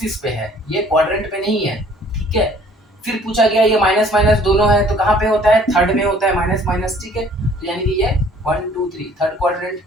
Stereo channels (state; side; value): normal; both; correlation 0.56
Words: पे है, ये क्वाड्रेंट पे नहीं है, ठीक है। फिर पूछा गया ये माइनस माइनस दोनों है, तो कहाँ पे होता है, थर्ड में होता है माइनस माइनस, ठीक है। तो यानी कि ये 1 2 3 थर्ड क्वाड्रेंट।